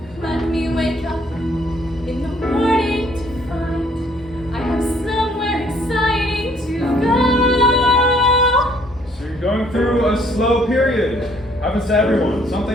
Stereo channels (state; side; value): normal; both; correlation 0.63